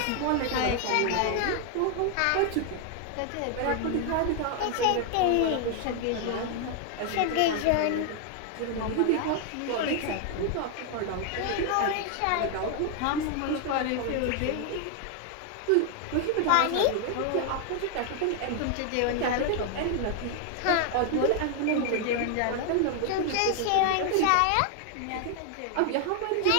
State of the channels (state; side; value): different; both; correlation 0.00